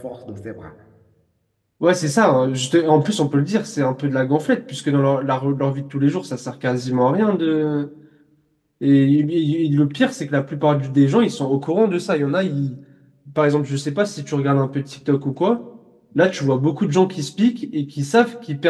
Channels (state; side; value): identical; both; correlation 1.00